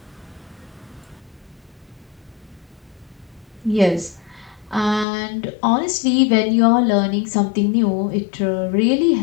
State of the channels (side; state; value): right; drops out; at 5.1 s